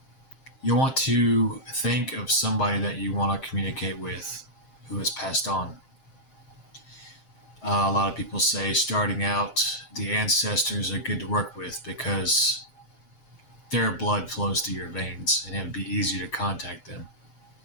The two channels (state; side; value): late; right; 7.6 ms